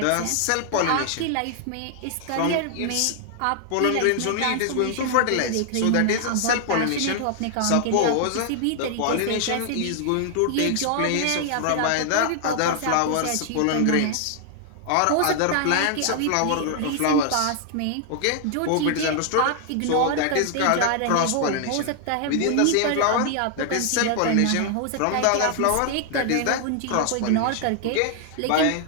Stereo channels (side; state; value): both; different; correlation 0.00